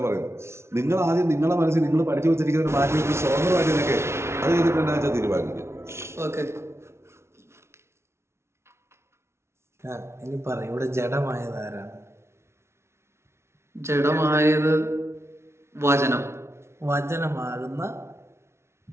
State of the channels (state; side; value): late; left; 0.13 ms